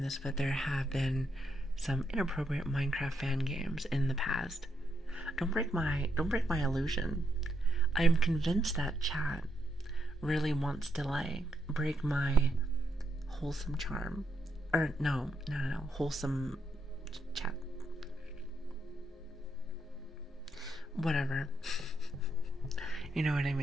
this, but there have been some inappropriate Minecraft fan games in the past. Don't break my illusion. I am convinced that chat really wants to like break my wholesome charm. Or no, wholesome chat. Whatever. You know what I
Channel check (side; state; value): both; normal; correlation 0.79